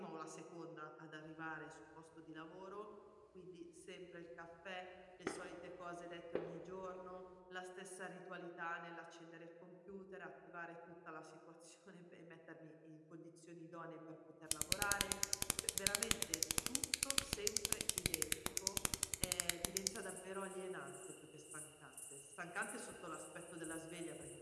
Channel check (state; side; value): identical; both; correlation 1.00